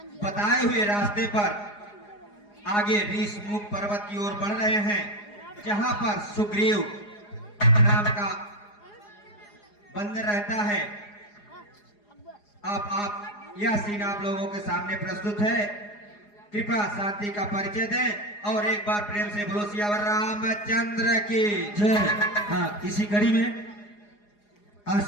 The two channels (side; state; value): right; late; 4.8 ms